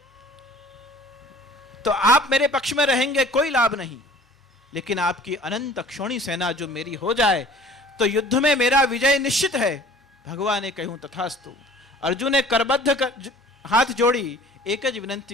तो आप मेरे पक्ष में रहेंगे कोई लाभ नहीं, लेकिन आपकी अनंत अक्षोणी सेना जो मेरी हो जाए तो युद्ध में मेरा विजय निश्चित है. भगवान ने कहूं तथास्तु. अर्जुन ने करबद्ध हाथ जोड़ी एक ज विनंती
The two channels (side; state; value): both; normal; correlation 0.49